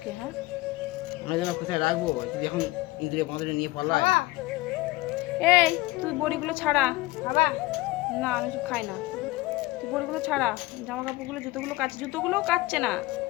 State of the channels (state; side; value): quieter; right; 20.0 dB